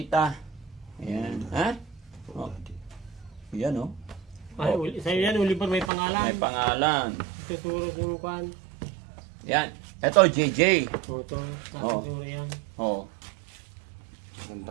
Ayan. Ha? Oh, Oh. daddy. Yan oh. Ay, sa'yo yan, Oliver, may pangalan. May pangalan. Tuturo yung kwan. Yan. Ito, JJ. Toto. Oh. Tuturo yan. Oh. Ganda.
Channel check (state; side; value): drops out; left; at 5.9 s